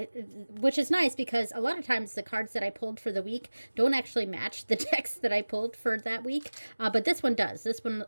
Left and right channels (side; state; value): both; inverted; correlation -1.00